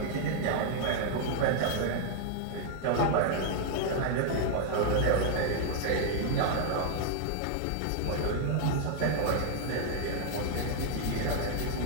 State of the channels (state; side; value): different; both; correlation -0.01